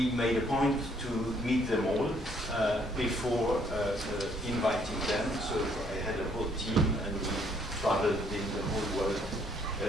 made a point to meet them all before inviting them. So I had a whole team, and we traveled in the whole world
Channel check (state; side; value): normal; both; correlation 0.66